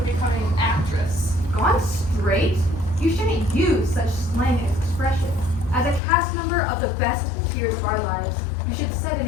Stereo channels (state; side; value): drops out; right; at 6.0 s